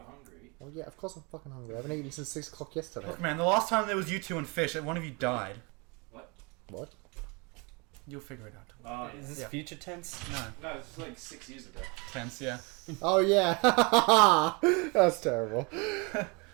hungry... oh yeah, of course I'm fucking hungry. I haven't eaten since 6 o'clock yesterday. Look, man, the last time there was you two and fish, one of you died. What? You'll figure it out. Oh, Is this Yeah. future tense? No. no, it's like 6 years ago. Tense, yeah. Oh yeah. That's terrible.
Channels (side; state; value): left; quieter; 29.9 dB